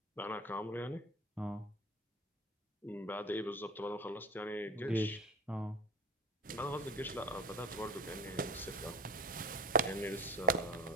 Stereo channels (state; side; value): normal; both; correlation 0.33